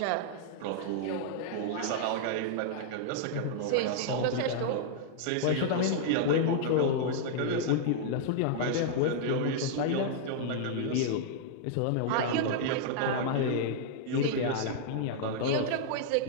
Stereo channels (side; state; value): both; different; correlation -0.01